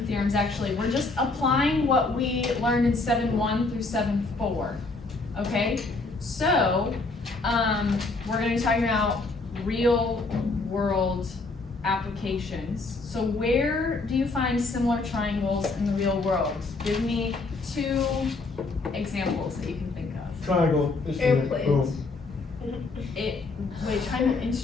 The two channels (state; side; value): quieter; right; 3.6 dB